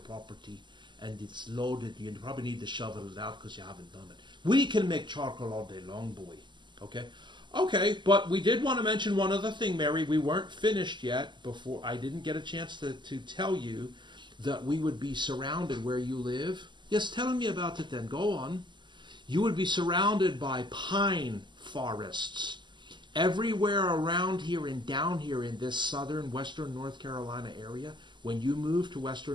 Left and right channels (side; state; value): left; late; 0.22 ms